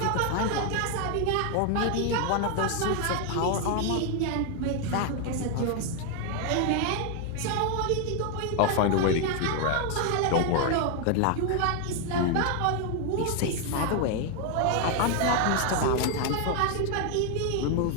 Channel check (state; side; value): different; both; correlation 0.00